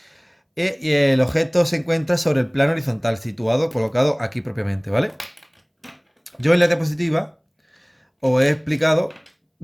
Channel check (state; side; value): identical; both; correlation 1.00